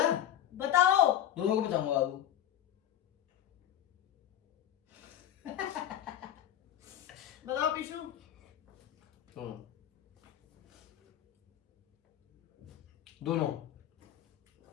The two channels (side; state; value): right; quieter; 11.3 dB